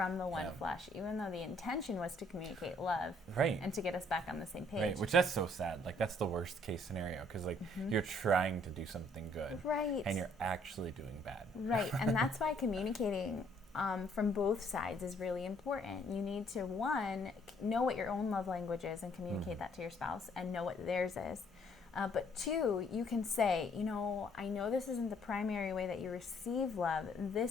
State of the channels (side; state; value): both; normal; correlation 0.64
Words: the one flesh, even though the intention was to communicate love, and to get us back on the same page. Right, which that's so sad. Like, that's the worst case scenario, because like you're trying to do something good, and you're actually doing bad. Right, and that's why communicating from both sides is really important. You need to, one, know what your own love language is and communicate that to your spouse, and know what theirs is. But 2, you can say, I know this isn't the primary way that you receive love.